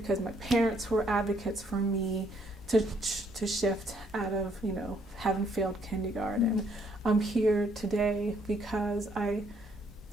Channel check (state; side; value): normal; both; correlation 0.69